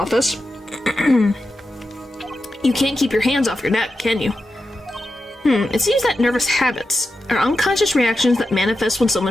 you can't keep your hands off your neck, can you? It seems that nervous habits are unconscious reactions that manifest when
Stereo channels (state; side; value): normal; both; correlation 0.90